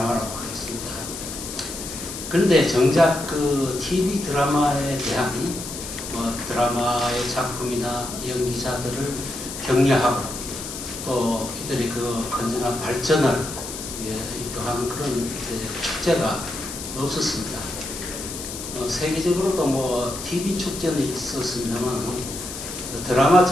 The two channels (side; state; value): left; noise; hiss, 9 dB below the sound